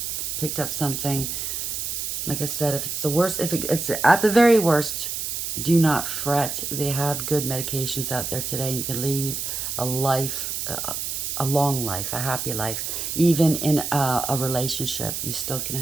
picked up something, like I said, if it's the worst, if it's at the very worst, do not fret. They have good medications out there today. You can lead a life, a long life, a happy life. Even in a relationship, you still can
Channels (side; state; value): right; noise; hiss, 3 dB below the sound